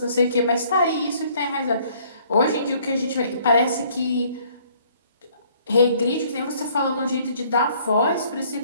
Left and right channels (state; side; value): inverted; both; correlation -0.61